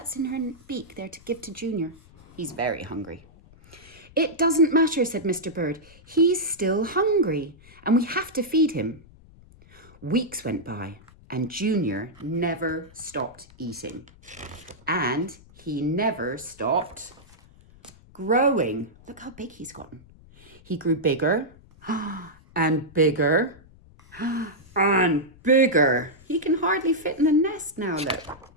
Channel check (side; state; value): left; noise; rumble, 24 dB below the sound